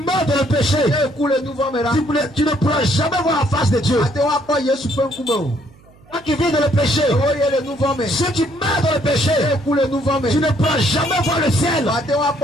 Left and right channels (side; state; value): right; noise; hum, 27 dB below the sound